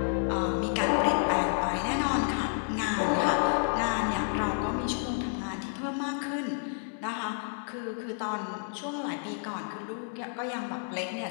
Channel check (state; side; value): silent; right; digital silence